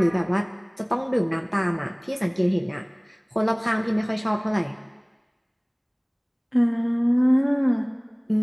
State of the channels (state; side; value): identical; both; correlation 1.00